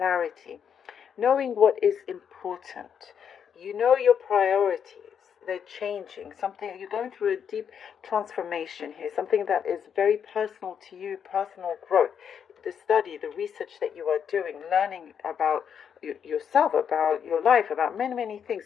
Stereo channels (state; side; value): quieter; right; 7.7 dB